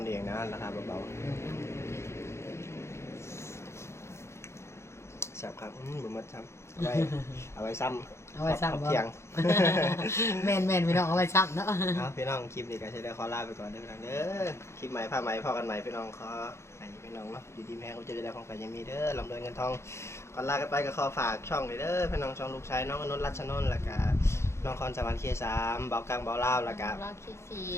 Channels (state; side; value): late; right; 0.13 ms